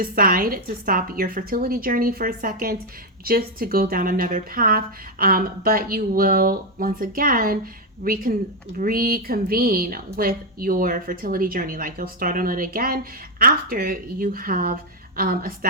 to stop your fertility journey for a second just to go down another path, but you will once again reconvene with your fertility journey. Like you'll start on it again after you have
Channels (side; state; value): both; normal; correlation 0.04